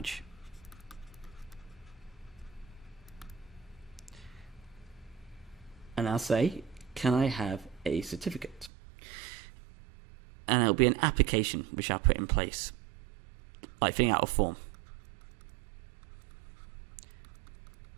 And I'll say, can I have a certificate? And it'll be an application which I'll put in place, like filling out a form.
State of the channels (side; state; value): left; drops out; at 8.7 s